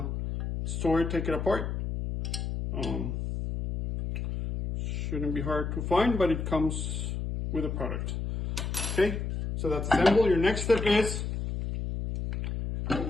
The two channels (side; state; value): left; noise; hum, 3 dB below the sound